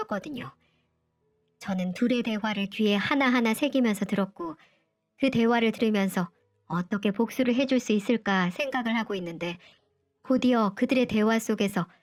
저는 둘의 대화를 귀에 하나하나 새기면서 들었고 그 대화를 들으면서 어떻게 복수를 해줄 수 있을까 생각을 하고 있는데 곧이어 그들의 대화 속에서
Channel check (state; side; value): identical; both; correlation 1.00